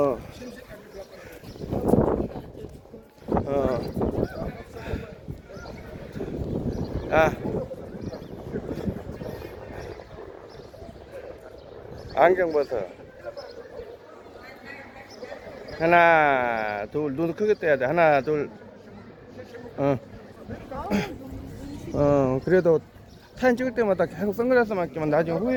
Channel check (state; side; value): identical; both; correlation 1.00